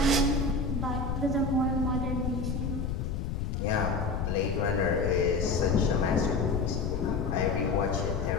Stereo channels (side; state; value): left; noise; rumble, 2 dB below the sound